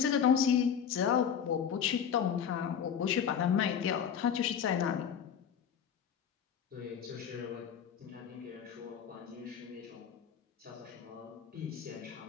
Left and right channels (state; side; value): quieter; right; 8.0 dB